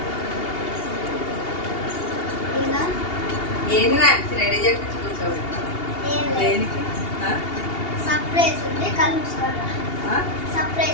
ఇలా రెడీ చేయించి కూర్చోబెట్టాను. సర్ప్రైజ్ ఉంది, కళ్ళు మూసుకుంటా.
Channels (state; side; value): late; right; 2.8 ms